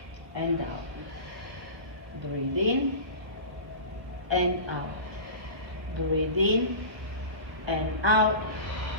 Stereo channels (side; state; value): left; late; 1.2 ms